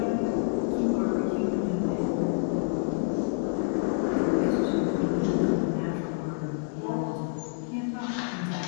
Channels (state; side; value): silent; right; 56 dB below the other